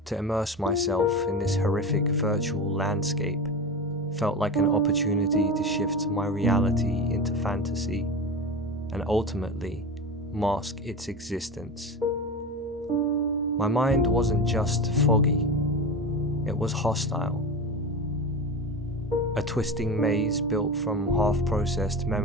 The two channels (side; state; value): both; normal; correlation 0.25